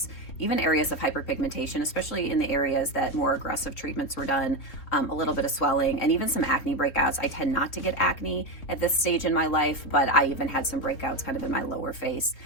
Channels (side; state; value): right; late; 3.6 ms